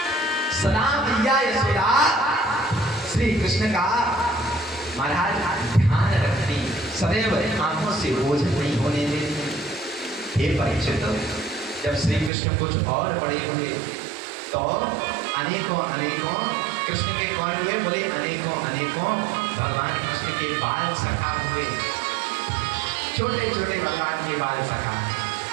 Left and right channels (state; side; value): drops out; left; at 12.3 s